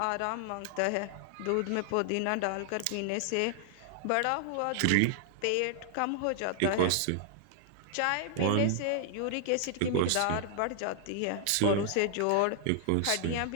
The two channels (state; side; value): different; both; correlation 0.00